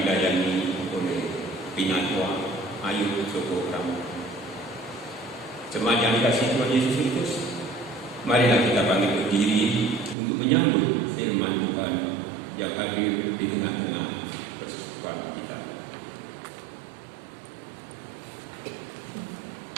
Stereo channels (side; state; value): left; drops out; at 10.2 s